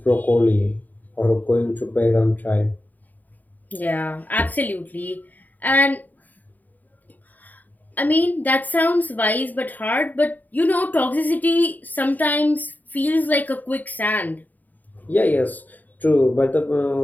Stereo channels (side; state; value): right; late; 0.083 ms